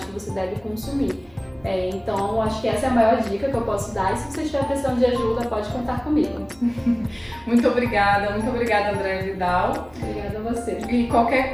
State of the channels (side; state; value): right; noise; hum, 28 dB below the sound